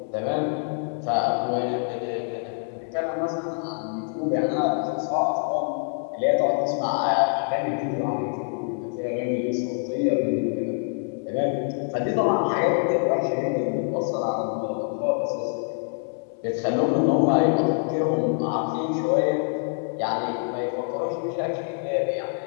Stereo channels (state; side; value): silent; right; 61 dB below the other